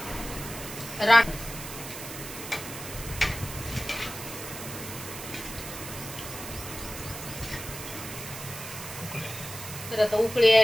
राख तर आता उकळी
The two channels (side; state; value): right; noise; hiss, 10 dB below the sound